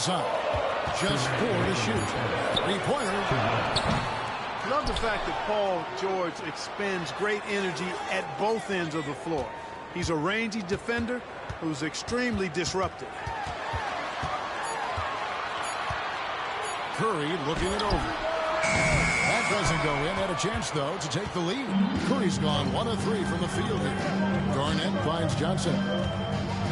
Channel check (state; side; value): identical; both; correlation 1.00